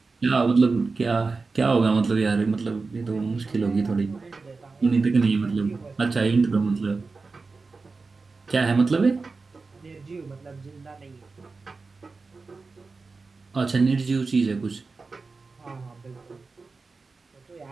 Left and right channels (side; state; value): left; quieter; 4.1 dB